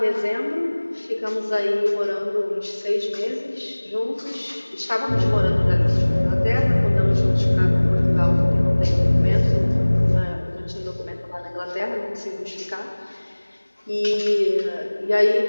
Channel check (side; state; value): both; inverted; correlation -1.00